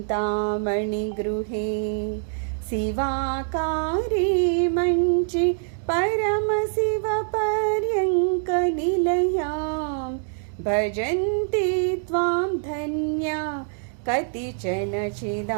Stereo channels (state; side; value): silent; left; digital silence